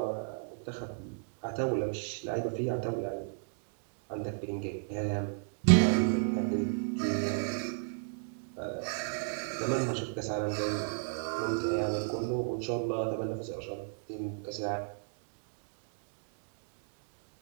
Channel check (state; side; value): silent; left; digital silence